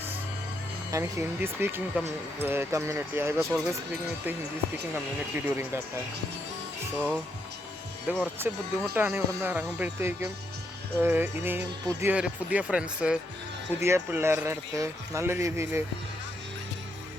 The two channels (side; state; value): both; normal; correlation 0.78